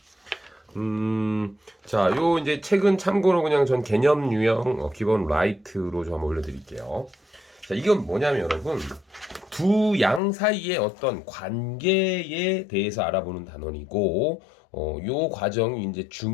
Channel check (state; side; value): drops out; right; at 10.2 s